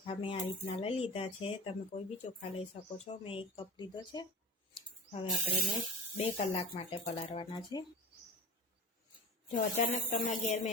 મેં આ રીતના લઈ લીધા છે। તમે કોઈ બી ચોખા લઈ શકો છો। મેં 1 કપ લીધો છે। હવે આપણે એને 2 કલાક માટે પલાળવાના છે। જો અચાનક તમારા ઘેર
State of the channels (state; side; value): normal; both; correlation 0.35